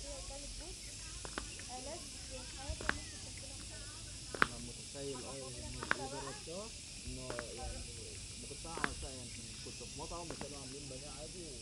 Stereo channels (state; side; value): identical; both; correlation 1.00